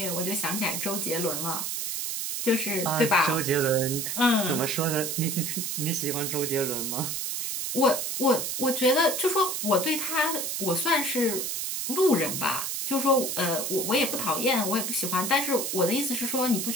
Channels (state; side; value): noise; right; hiss, 2 dB below the sound